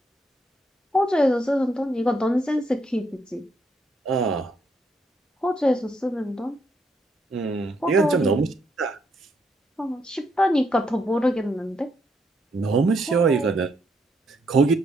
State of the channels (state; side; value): normal; both; correlation 0.75